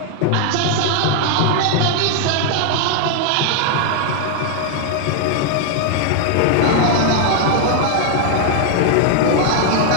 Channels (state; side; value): different; both; correlation 0.00